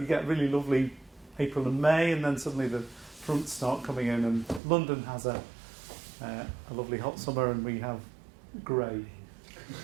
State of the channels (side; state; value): left; drops out; at 4.6 s